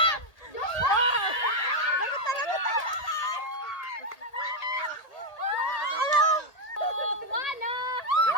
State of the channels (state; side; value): late; right; 1.8 ms